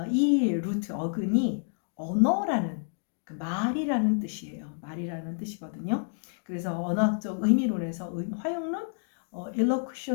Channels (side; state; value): right; silent; 59 dB below the other